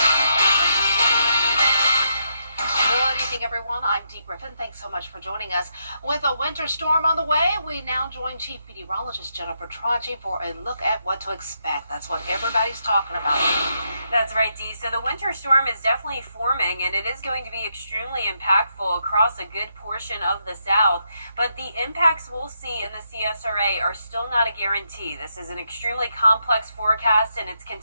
Good evening, everyone. I'm Dee Griffin. Thanks so much for joining us. With a winter storm on the way, we now join Chief Meteorologist Jennifer Tracci for a look at what to expect. That's what everybody's talking about. That's right, Dee. So the winter storm is definitely forming, and it is going to be extremely impactful across a good portion of the South. But the impacts we'll see in the CSRA are still not a guarantee. This is an extremely complex forecast, and it's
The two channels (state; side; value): inverted; both; correlation -0.79